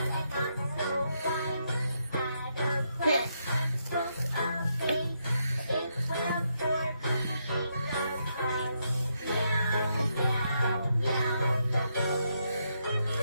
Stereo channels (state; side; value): inverted; both; correlation -0.79